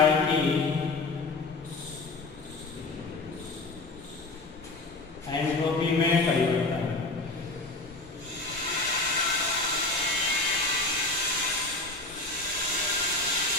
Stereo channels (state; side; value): quieter; right; 3.3 dB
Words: की एंट्रोपी में परिवर्तन।